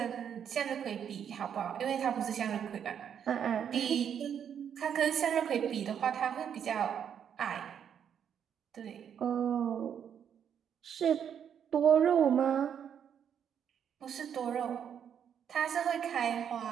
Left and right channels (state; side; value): quieter; left; 8.4 dB